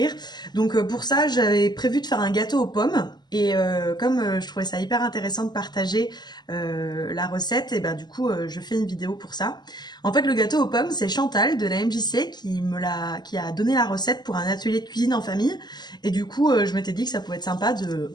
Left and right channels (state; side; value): late; right; 0.21 ms